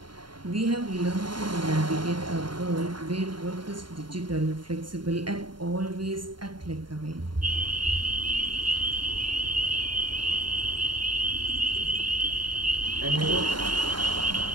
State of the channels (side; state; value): left; late; 0.72 ms